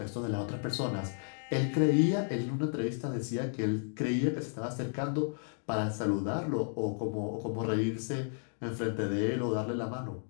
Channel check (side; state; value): right; silent; digital silence